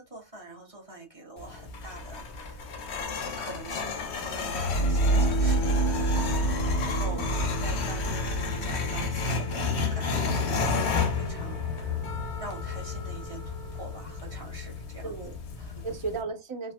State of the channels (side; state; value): right; late; 3.2 ms